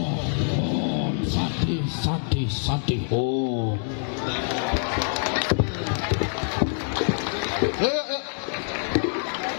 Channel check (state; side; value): silent; right; digital silence